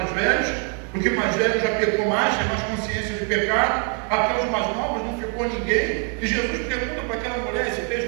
velhos, porque mais velho já pecou mais, tem mais consciência de pecado. Até os mais novos não ficou ninguém. E Jesus pergunta para aquela mulher, esse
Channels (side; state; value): left; quieter; 37.6 dB